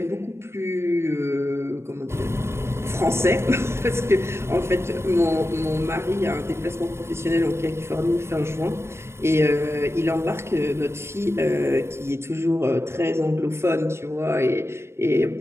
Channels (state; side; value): late; left; 0.13 ms